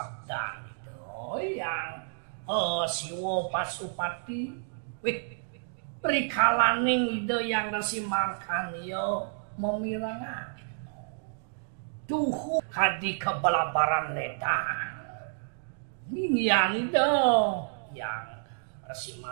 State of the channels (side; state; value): left; silent; digital silence